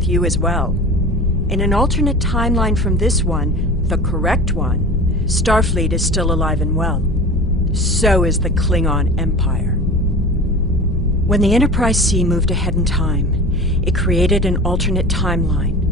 you as well. In an alternate timeline from this one, the correct one, Starfleet is still alive and well. So is the Klingon Empire. When the Enterprise C moved ahead in time, it created an alternate timeline,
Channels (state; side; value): normal; both; correlation 0.35